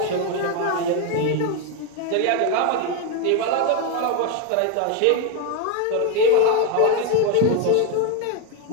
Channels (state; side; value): different; both; correlation 0.01